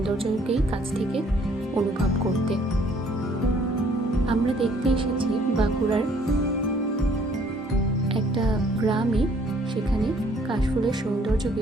কাছ থেকে অনুভব করতে। আমরা দেখতে এসেছি বাঁকুড়ার একটা গ্রামে, সেখানে কাশফুলের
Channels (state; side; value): normal; both; correlation 0.61